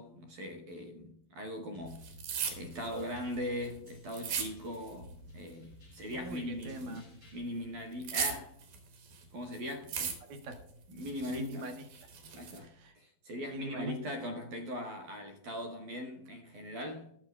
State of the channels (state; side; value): late; left; 12 ms